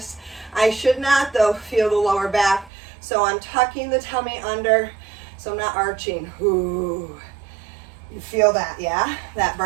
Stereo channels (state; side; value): drops out; left; at 2.7 s